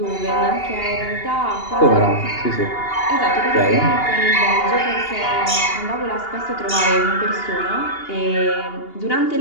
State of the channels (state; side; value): late; right; 2.8 ms